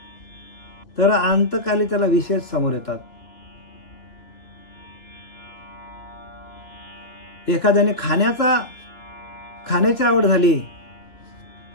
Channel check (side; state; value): right; late; 2.8 ms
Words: तर अंतकाली त्याला विषय समोर येतात. एखाद्याने खाण्याची आवड झाली